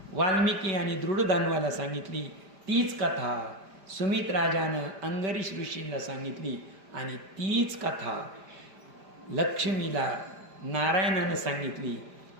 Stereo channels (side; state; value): left; late; 5.0 ms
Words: वाल्मिकी आणि दृढधन्वाला सांगितली, तीच कथा सुमित राजानं अंगरीश ऋषींना सांगितली आणि तीच कथा लक्ष्मीला नारायणानं सांगितली,